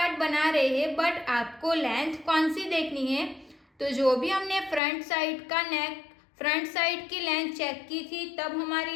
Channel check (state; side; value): drops out; right; at 4.8 s